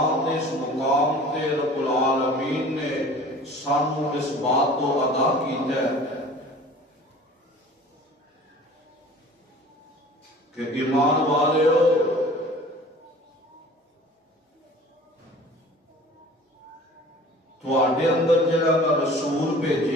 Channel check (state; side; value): normal; both; correlation 0.45